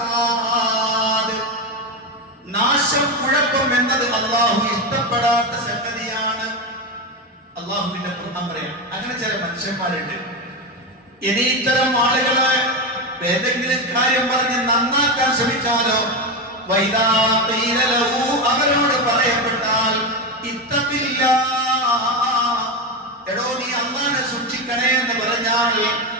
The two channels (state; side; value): normal; both; correlation 0.14